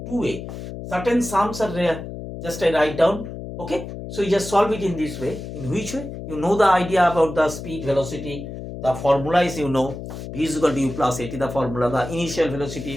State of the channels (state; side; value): noise; left; hum, 9 dB below the sound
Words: 2A. Certain sums are just I write down. Okay. So you just solve it in this way. In which way? You know the idea about the speed, velocity. The formula is v is equal to u plus at the formula, the initial velocity,